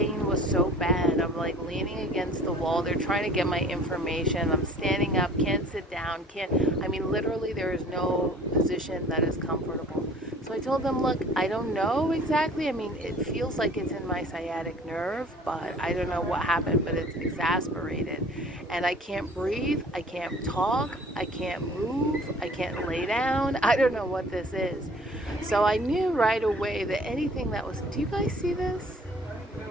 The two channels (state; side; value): normal; both; correlation 0.50